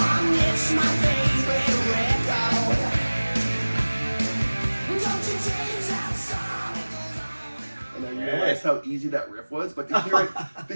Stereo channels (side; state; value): both; inverted; correlation -1.00